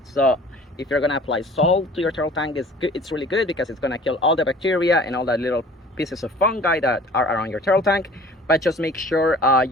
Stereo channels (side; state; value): both; normal; correlation 0.48